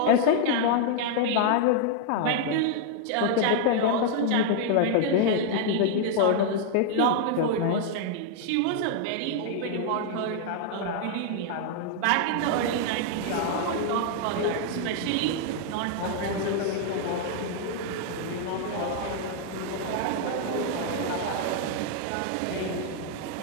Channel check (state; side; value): different; both; correlation 0.00